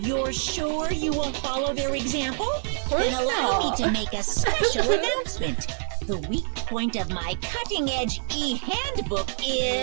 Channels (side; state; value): left; silent; digital silence